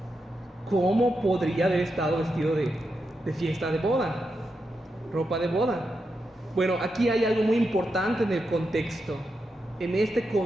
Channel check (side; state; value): both; normal; correlation 0.86